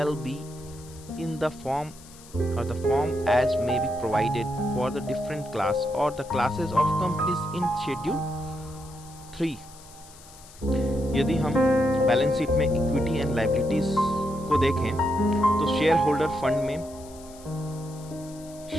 be in the form as may be provided for the different class or the classes of companies in schedule 3. यदि हम balance sheet में equity and liabilities को देखें तो share holder fund में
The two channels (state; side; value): noise; left; hiss, 21 dB below the sound